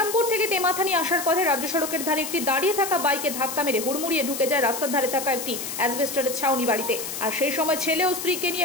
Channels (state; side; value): noise; left; hiss, 6 dB below the sound